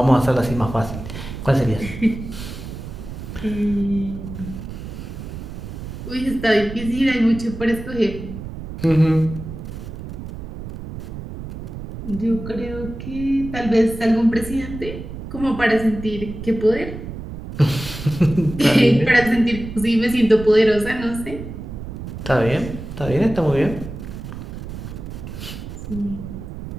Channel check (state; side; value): noise; right; rumble, 10 dB below the sound